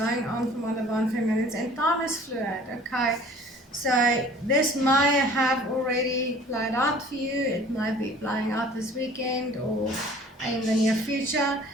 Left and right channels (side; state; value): both; normal; correlation 0.50